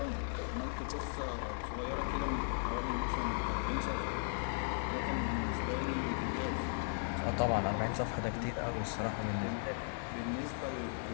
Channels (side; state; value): right; silent; digital silence